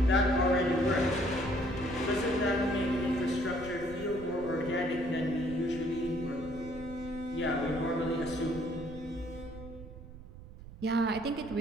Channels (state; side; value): noise; right; rumble, 15 dB below the sound